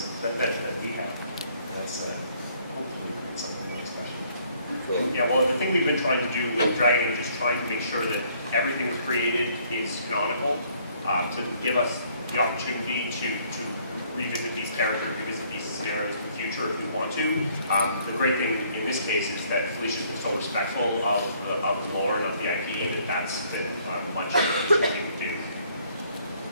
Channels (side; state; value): both; inverted; correlation -0.63